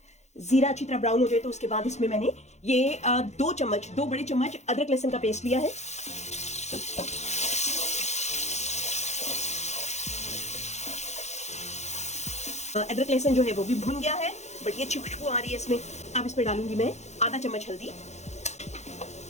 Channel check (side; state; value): right; late; 0.33 ms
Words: जीरा अच्छी तरह ब्राउन हो जाए तो उसके बाद इसमें मैंने ये 2 बड़े चम्मच अदरक लहसुन का पेस्ट लिया है। अदरक लहसुन जो है वो भी भुन गया है, बट ये अच्छी खुशबू आ रही है इसमें। अब इसमें डालूंगी मैं आधा चम्मच हल्दी।